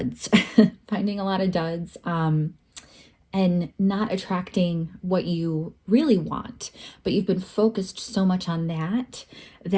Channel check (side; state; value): both; identical; correlation 1.00